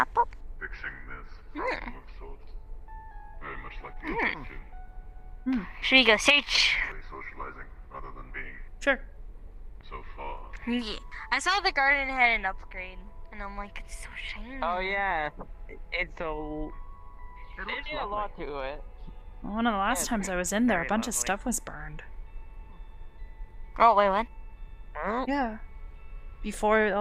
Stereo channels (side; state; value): both; identical; correlation 1.00